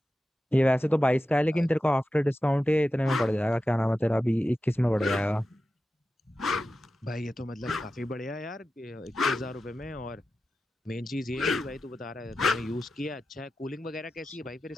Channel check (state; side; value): normal; both; correlation 0.92